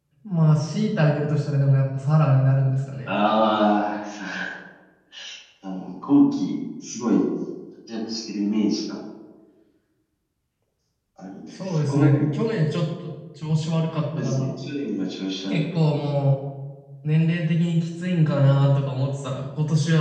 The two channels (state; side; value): identical; both; correlation 1.00